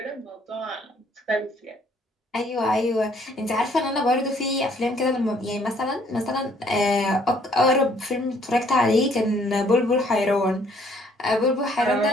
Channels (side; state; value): both; normal; correlation 0.63